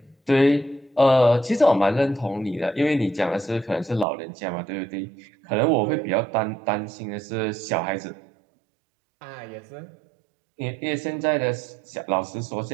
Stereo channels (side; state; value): left; drops out; at 4.0 s